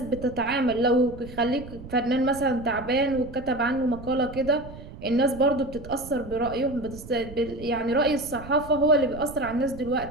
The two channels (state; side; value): noise; right; rumble, 14 dB below the sound